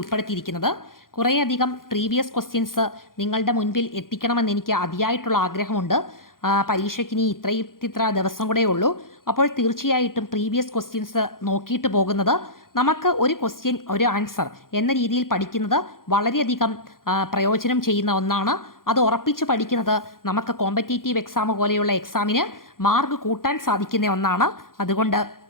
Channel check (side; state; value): right; late; 0.91 ms